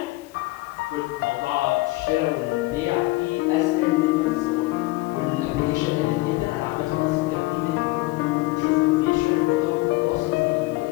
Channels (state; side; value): quieter; right; 21.1 dB